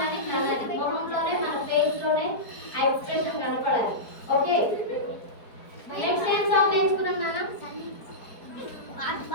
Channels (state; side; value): late; right; 4.5 ms